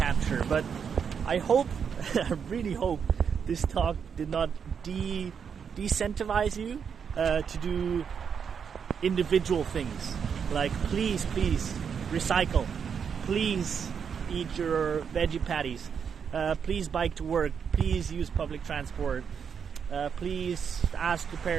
But I hope, I really hope, this talk did not decentivize you to do individual things, like please recycle, please eat your veggie patties, please bike to work, please use public transport, please ask your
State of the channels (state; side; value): quieter; left; 6.9 dB